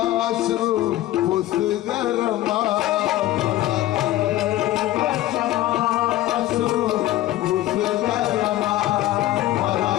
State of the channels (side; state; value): right; quieter; 15.0 dB